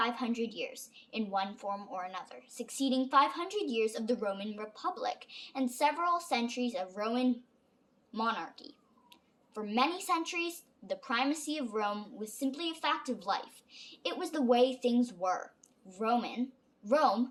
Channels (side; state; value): both; identical; correlation 1.00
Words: years in one form or another, succeeding 500 years of the Roman Republic and several centuries of Roman monarchy. For many centuries, the primacy of Rome was simply a fact of life. It was the way things were. Rome